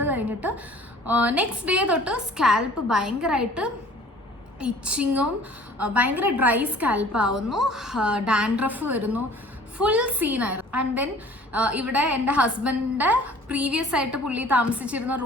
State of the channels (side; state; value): both; normal; correlation 0.50